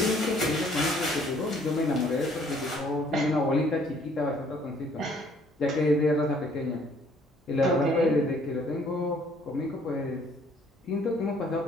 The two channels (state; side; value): normal; both; correlation 0.61